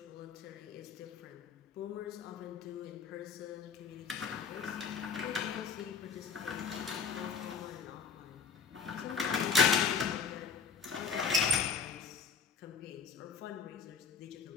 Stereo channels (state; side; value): quieter; right; 5.7 dB